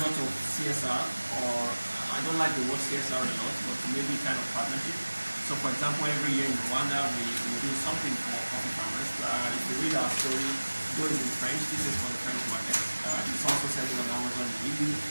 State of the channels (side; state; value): both; inverted; correlation -1.00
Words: of CSR, or I don't like the word CSR a lot, but maybe kind of partnership. So for example, every year in Rwanda, we do something for coffee farmers. If you read our story, though it's in French, this is for the French market. It's also selling on Amazon and EU.